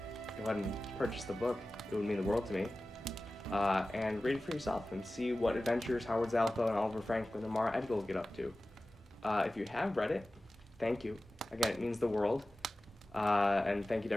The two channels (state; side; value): normal; both; correlation 0.96